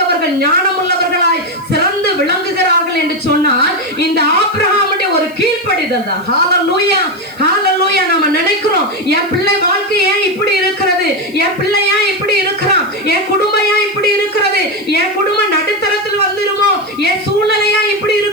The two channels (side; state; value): left; noise; hiss, 26 dB below the sound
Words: ஞானமுள்ளவர்களாய் சிறந்து விளங்குகிறார்கள் என்று சொன்னால் இந்த ஆபிரகாமுடைய ஒரு கீழ்ப்படிதல் தான். ஹல்லேலூயா, ஹல்லேலூயா. நம்ம நினைக்கிறோம் என் பிள்ளை வாழ்க்கை ஏன் இப்படி இருக்கிறது, என் பிள்ளை ஏன் இப்படி இருக்கிறான், என் குடும்பம் ஏன் இப்படி இருக்கிறது, என் குடும்பம் நடுத்தரத்தில் வந்துருமோ, என் சூழ்நிலையா இப்படி